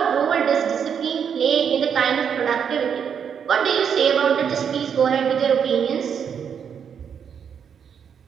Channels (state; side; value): quieter; left; 7.5 dB